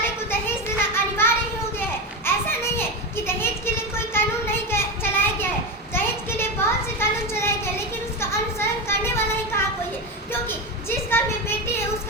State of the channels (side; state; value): both; normal; correlation 0.17